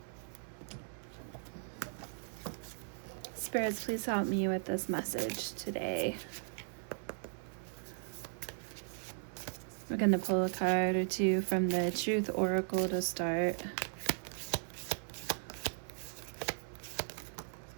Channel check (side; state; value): left; silent; 53 dB below the other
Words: Spirits, please help me with this message today. We're going to pull a card or two from the Truth Oracle to start.